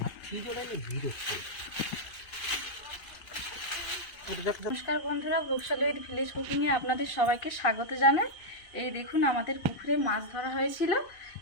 নমস্কার বন্ধুরা, বৈশালী উইথ ভিলেজ কুকিং এ আপনাদের সবাইকে স্বাগত জানাই। এই দেখুন, আমাদের পুকুরে মাছ ধরা হয়েছিল,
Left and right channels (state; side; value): late; right; 2.5 ms